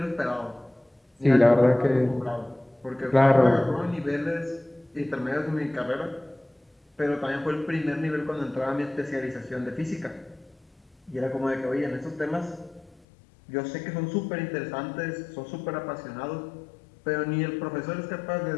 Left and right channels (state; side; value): drops out; right; at 13.0 s